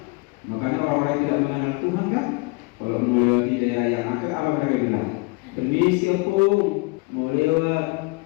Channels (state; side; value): quieter; right; 27.1 dB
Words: Makanya orang-orang yang tidak mengenal Tuhan kan, kalau melewati daerah yang akan apa mereka bilang? Permisi opung, mau lewat